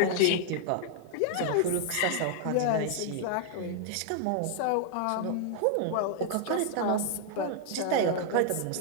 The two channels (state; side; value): different; both; correlation -0.01